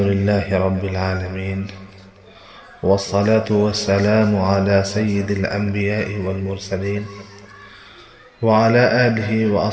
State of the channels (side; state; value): both; identical; correlation 1.00